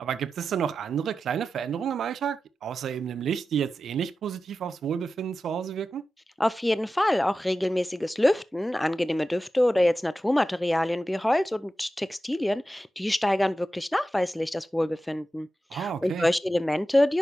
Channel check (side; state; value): both; normal; correlation 0.93